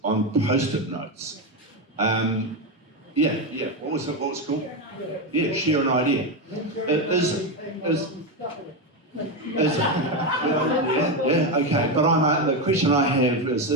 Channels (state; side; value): normal; both; correlation 0.11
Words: on post-it notes. What was it called? Yeah, share an idea. Okay. But the question I have is